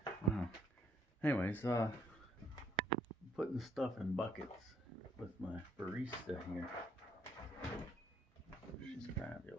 Wow. Anyways, putting stuff in buckets with my barista here. She's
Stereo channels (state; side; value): normal; both; correlation 0.66